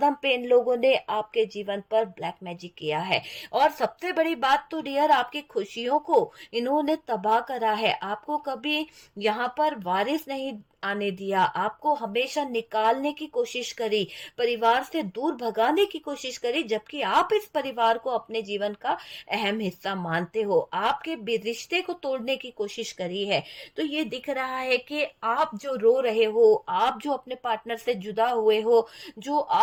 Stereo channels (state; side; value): identical; both; correlation 1.00